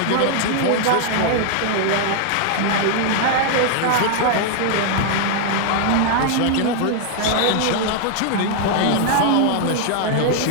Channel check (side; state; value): both; different; correlation 0.00